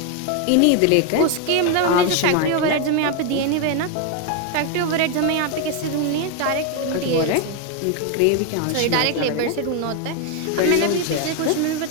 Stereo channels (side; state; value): both; different; correlation 0.01